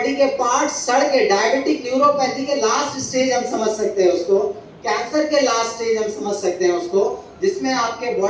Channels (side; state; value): both; identical; correlation 1.00